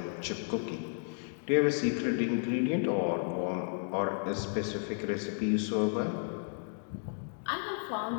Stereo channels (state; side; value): silent; right; 56 dB below the other